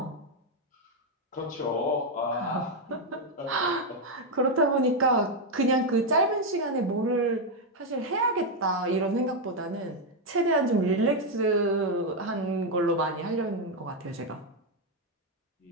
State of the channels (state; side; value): normal; both; correlation 0.03